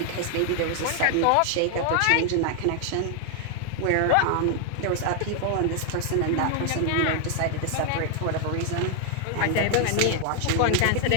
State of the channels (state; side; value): different; both; correlation 0.00